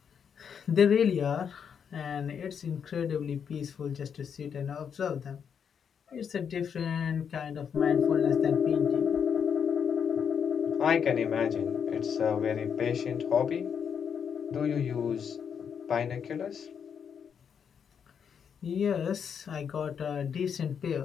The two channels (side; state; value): right; quieter; 7.3 dB